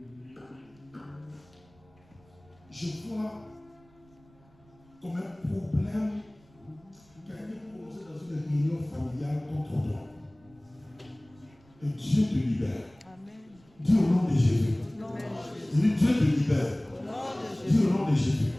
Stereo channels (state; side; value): noise; right; rumble, 29 dB below the sound